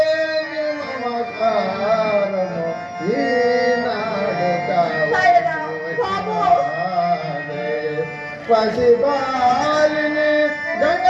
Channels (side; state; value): both; identical; correlation 1.00